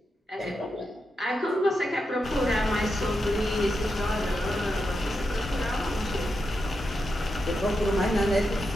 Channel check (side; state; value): both; normal; correlation 0.87